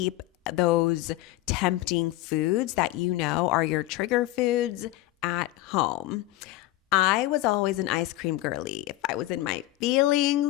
those tempting foods that you know are your trigger foods at home. I was always an ice cream girly. If I was in my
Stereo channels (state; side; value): quieter; right; 17.2 dB